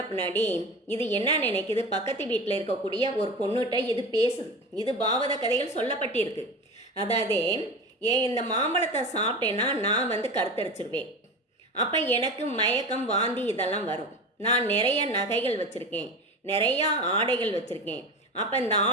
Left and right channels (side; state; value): both; normal; correlation 0.29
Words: பின்னாடி இது என்ன நினைக்குது, பக்கத்து வீட்டில் இருக்கக்கூடிய ஒரு பொண்ணுகிட்ட இது பேசுது. இது பாவத கதைகள் சொல்லப்பட்டிருக்கு. அதாவது இந்த மாம்பழத்தை சாப்பிட்டேன்னா நான் கருத்தரிச்சிருவேன், அப்போ எனக்கு மயக்கம் வாந்தி இதெல்லாம் வரும், நான் நிறைய நகைகள் வச்சுருக்கேன், நிறையா ஆடைகள் வச்சுருக்கேன், அப்போ இந்த